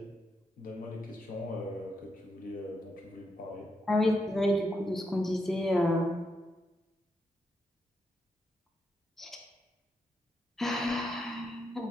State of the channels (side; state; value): both; normal; correlation 0.82